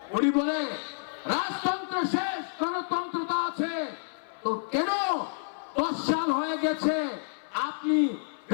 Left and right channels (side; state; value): right; silent; 55 dB below the other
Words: উনি বলে রাজতন্ত্র শেষ, গণতন্ত্রতা আছে। তো কেন 10 সাল হয়ে গেছে আপনি